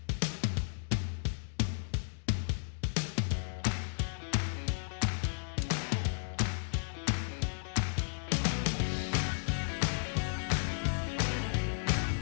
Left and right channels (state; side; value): silent; right; digital silence